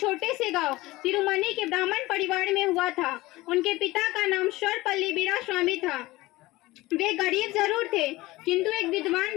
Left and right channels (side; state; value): right; quieter; 19.3 dB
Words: से गांव तिरुमनी के ब्राह्मण परिवार में हुआ था। उनके पिता का नाम सर्वपल्ली वीरास्वामी था। वे गरीब जरूर थे, किंतु एक